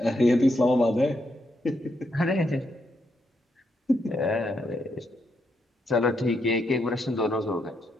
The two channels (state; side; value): normal; both; correlation 0.79